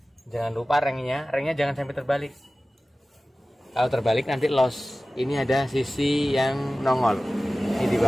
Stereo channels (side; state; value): both; normal; correlation 0.97